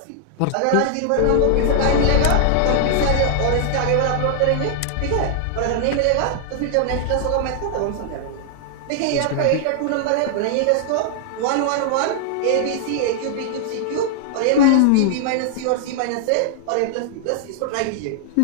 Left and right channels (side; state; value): both; different; correlation -0.01